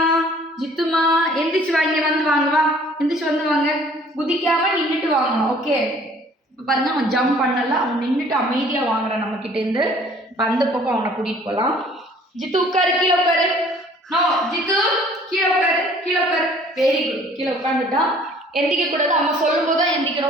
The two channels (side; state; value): both; normal; correlation 0.55